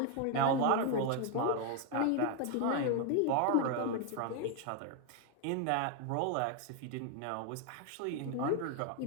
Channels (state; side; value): different; both; correlation 0.01